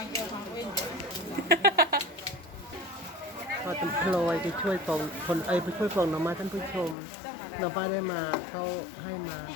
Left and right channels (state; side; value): drops out; right; at 7.0 s